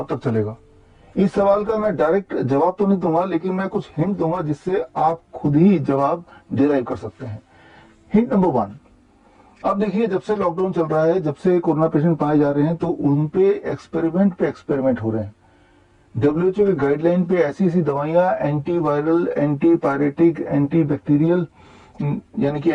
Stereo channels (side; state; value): both; identical; correlation 1.00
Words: तक चलेगा। इस सवाल का मैं डायरेक्ट जवाब तो नहीं दूंगा, लेकिन मैं कुछ हिंट दूंगा जिससे आप खुद ही जवाब डिराइव कर सकते हैं। हिंट नंबर 1, अब देखिए जब से लॉकडाउन चल रहा है, जब से कोरोना पेशेंट पाए जा रहे हैं, तो उन पे एक्सपेरिमेंट हो रहे हैं। WHO की गाइडलाइन पे ऐसी ऐसी दवाइयां, anti viral, anti pyretic, anti bacterial यानी कि